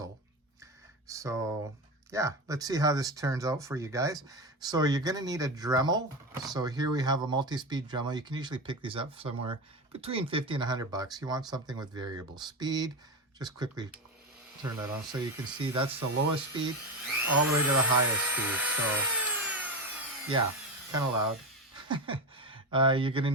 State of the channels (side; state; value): both; normal; correlation 0.18